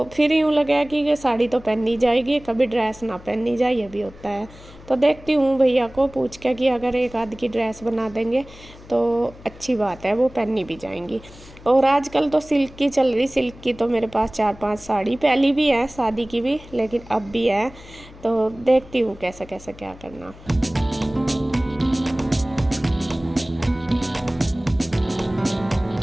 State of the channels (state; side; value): noise; left; hum, 20 dB below the sound